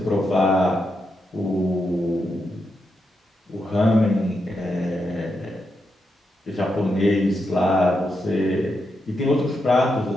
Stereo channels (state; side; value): normal; both; correlation 0.84